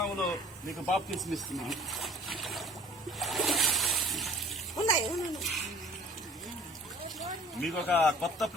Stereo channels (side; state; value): both; normal; correlation 0.48